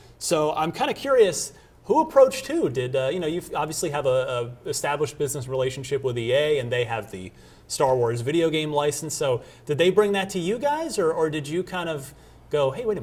So I'm kind of curious, who approached who? Did you obviously have a established business relationship with EA, and they have the Star Wars video game license. So did they bring that to you guys, or did you kind of go, hey, wait a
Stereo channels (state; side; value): identical; both; correlation 1.00